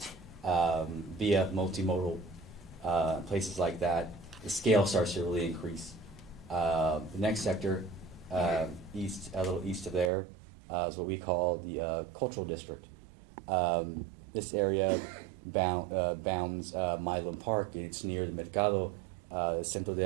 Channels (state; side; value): drops out; left; at 10.1 s